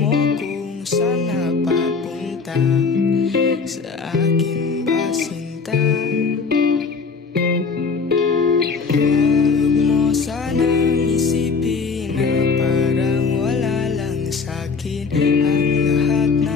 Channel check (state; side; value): quieter; right; 4.9 dB